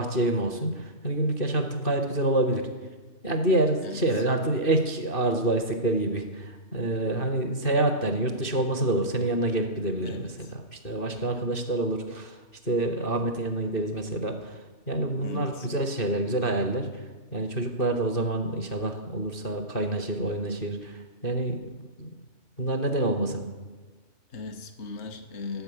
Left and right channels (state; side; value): late; right; 2.6 ms